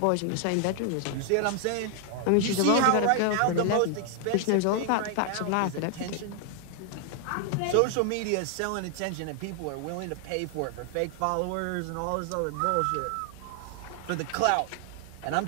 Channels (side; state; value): both; different; correlation 0.00